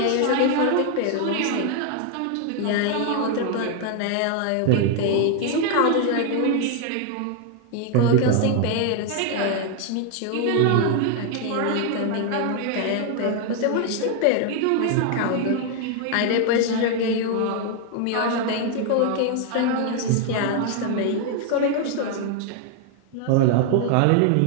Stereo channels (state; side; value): different; both; correlation 0.00